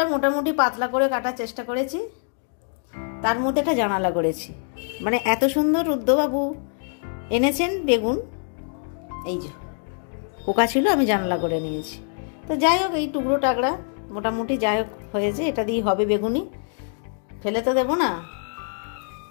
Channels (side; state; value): right; silent; 62 dB below the other